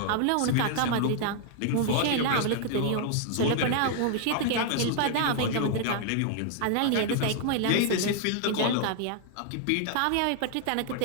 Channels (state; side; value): different; both; correlation 0.00